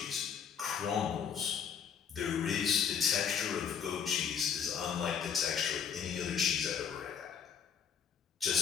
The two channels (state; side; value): quieter; right; 7.4 dB